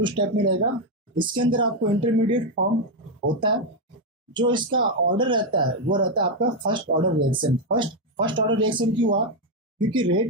स्टेप में रहेगा। इसके अंदर आपको इंटरमीडिएट फॉर्म होता है। जो इसका ऑर्डर रहता है वो रहता है आपका first order reaction. First order reaction क्यों हुआ? क्योंकि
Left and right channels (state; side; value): normal; both; correlation 0.04